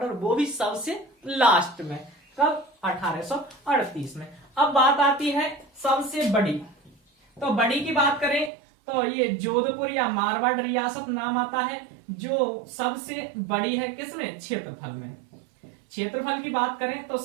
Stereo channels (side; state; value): left; drops out; at 8.5 s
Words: और वो भी सबसे लास्ट में। कब, 1838 में। अब बात आती है सबसे बड़ी। तो बड़ी की बात करें तो ये जोधपुर या मारवाड़ रियासत नाम आता है, जो सबसे बड़ी है। किसमें, क्षेत्रफल में। क्षेत्रफल की बात करें तो